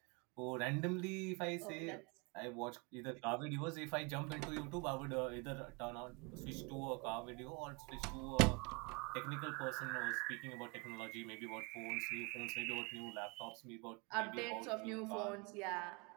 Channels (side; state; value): left; quieter; 29.8 dB